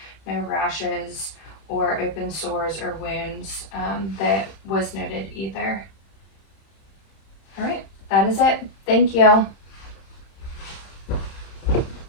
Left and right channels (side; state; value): right; late; 31 ms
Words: no rashes or open sores or wounds that was noted either. All right, that is it. Thank you.